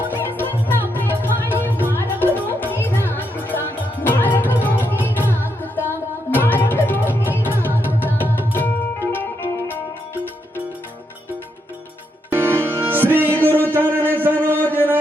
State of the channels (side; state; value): both; normal; correlation 0.79